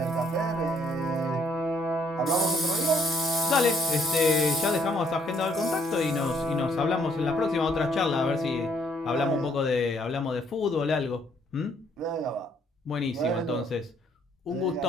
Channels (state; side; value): normal; both; correlation 0.67